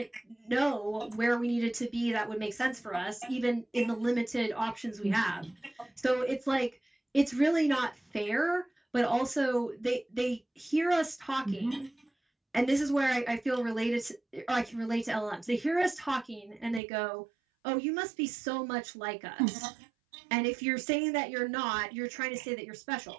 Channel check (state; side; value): drops out; left; at 16.8 s